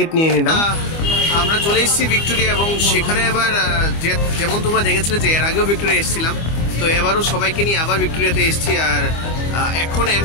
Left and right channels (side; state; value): right; late; 25 ms